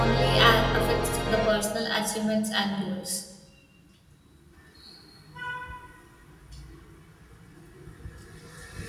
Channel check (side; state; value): both; identical; correlation 1.00